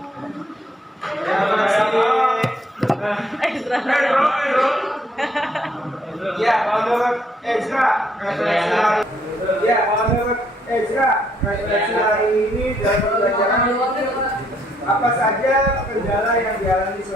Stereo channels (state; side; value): normal; both; correlation 0.69